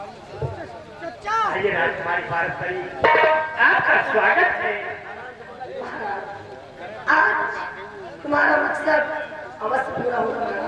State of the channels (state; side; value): identical; both; correlation 1.00